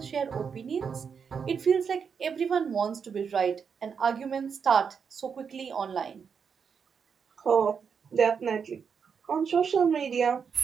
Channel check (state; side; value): quieter; left; 6.5 dB